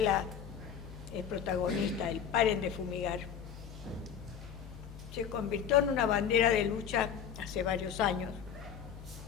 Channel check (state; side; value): quieter; right; 8.1 dB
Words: es protagonista, el Paren de Fumigar, se convirtió en una bandera de lucha hace varios años,